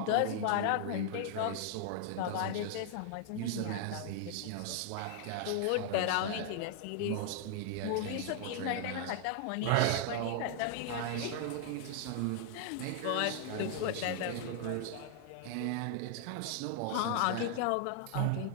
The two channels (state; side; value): different; both; correlation 0.00